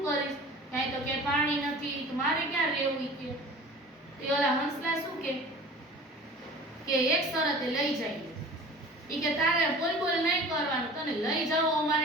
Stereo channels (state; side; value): normal; both; correlation 0.41